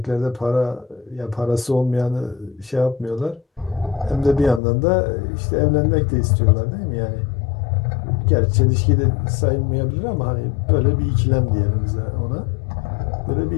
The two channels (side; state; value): right; drops out; at 4.6 s